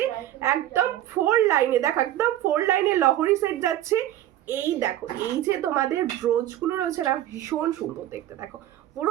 একদম 4 লাইনে, দেখো একদম 4 লাইনে লহরি সেট যাচ্ছে। এই দেখো এই যে তোমাদের ব্রোচগুলো রয়েছে না, ভীষণ সুন্দর দেখতে, দেখো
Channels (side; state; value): left; quieter; 13.0 dB